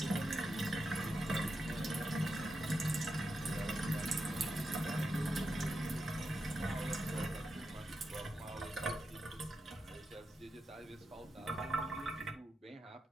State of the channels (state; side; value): normal; both; correlation 0.87